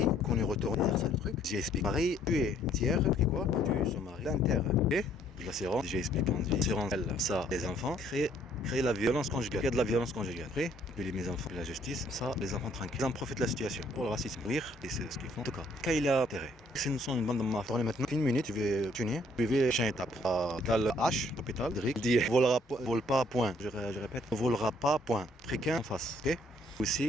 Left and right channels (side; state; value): both; normal; correlation 0.64